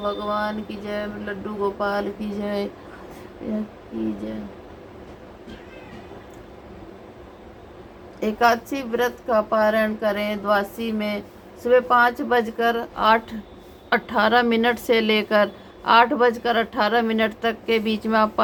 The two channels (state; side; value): identical; both; correlation 1.00